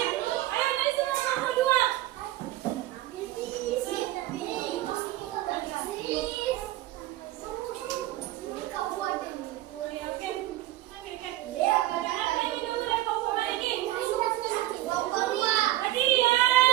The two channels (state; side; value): quieter; left; 15.5 dB